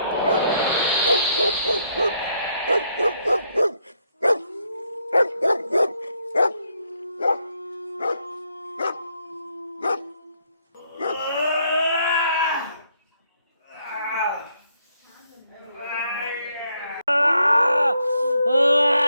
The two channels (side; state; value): both; inverted; correlation -0.74